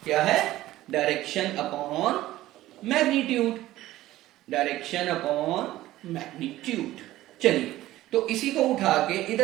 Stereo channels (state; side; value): quieter; left; 15.6 dB